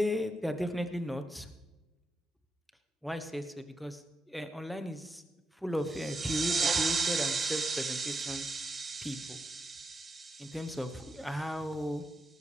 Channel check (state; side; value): normal; both; correlation 0.86